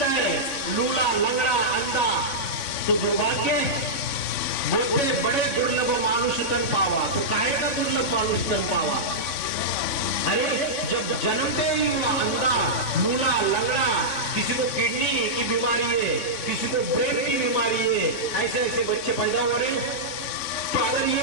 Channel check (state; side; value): late; right; 3.5 ms